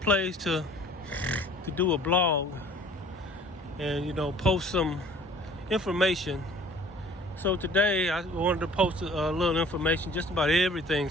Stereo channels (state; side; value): normal; both; correlation 0.51